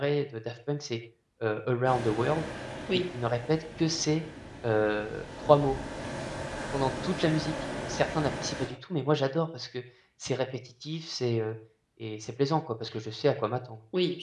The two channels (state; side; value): identical; both; correlation 1.00